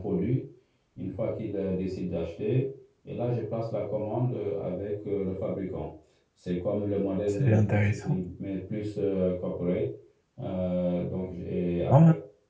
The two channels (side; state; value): both; identical; correlation 1.00